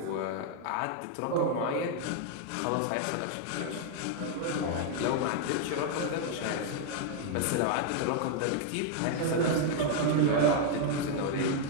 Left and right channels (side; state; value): both; different; correlation 0.00